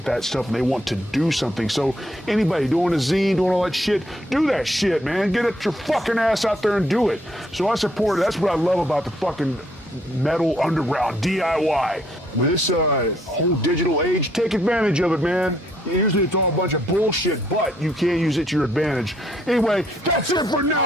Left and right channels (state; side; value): normal; both; correlation 0.69